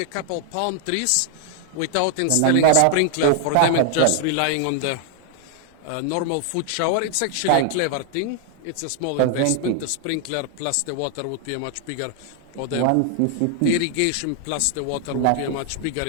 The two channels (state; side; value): different; both; correlation 0.00